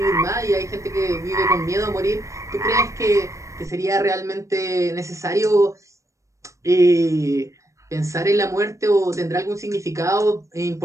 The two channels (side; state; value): left; late; 0.15 ms